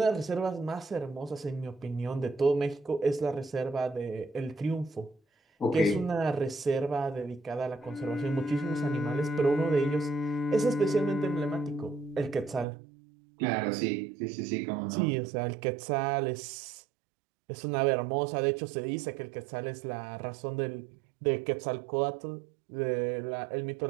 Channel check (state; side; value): drops out; left; at 12.7 s